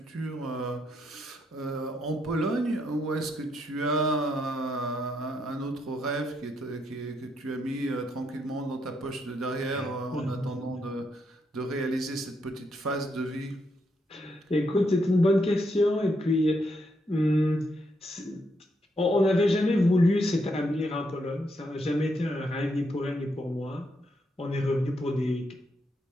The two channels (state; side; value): normal; both; correlation 0.78